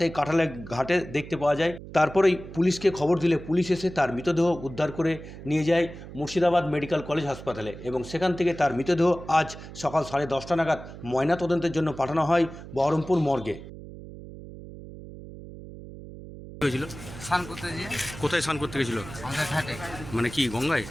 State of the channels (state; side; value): noise; right; hum, 14 dB below the sound